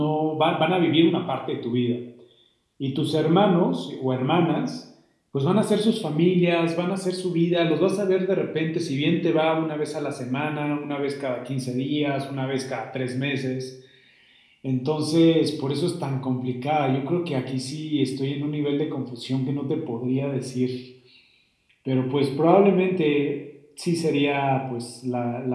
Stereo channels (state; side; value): identical; both; correlation 1.00